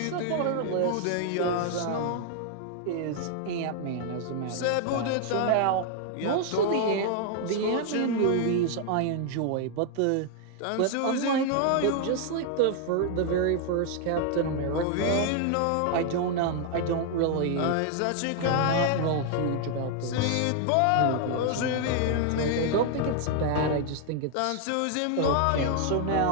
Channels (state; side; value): different; both; correlation 0.00